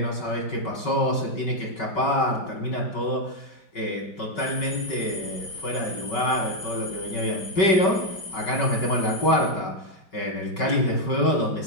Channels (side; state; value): right; late; 5.3 ms